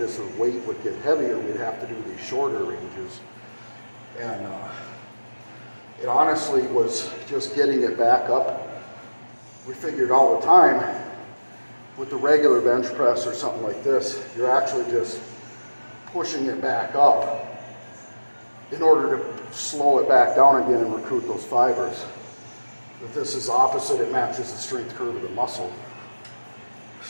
as the weight would get heavier, we'd have to do these shorter ranges. And it honestly was just getting it back up. We figured all the time with the regular bench press or something like this, you're actually just pushing it back up in order to slow it back down again and recruit those fibers. But this is opposite, it matches the strength curve of the muscle.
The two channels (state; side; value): inverted; both; correlation -1.00